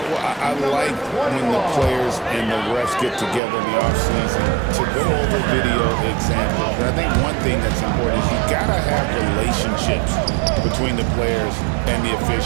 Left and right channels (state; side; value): drops out; left; at 3.4 s